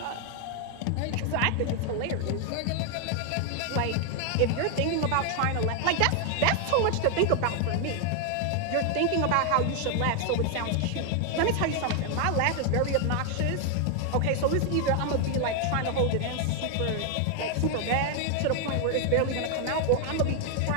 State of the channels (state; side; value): different; both; correlation 0.00